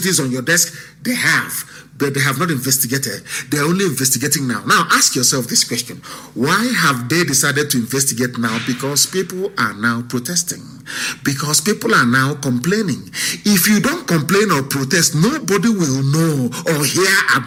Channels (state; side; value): identical; both; correlation 1.00